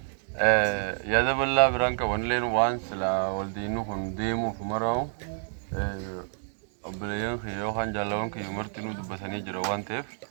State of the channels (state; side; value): silent; left; digital silence